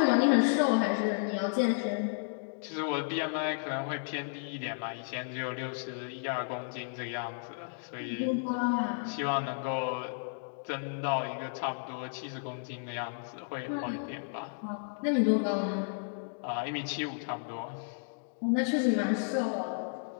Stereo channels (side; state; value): right; silent; digital silence